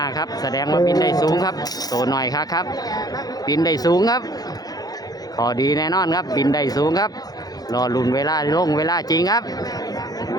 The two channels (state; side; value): late; right; 0.19 ms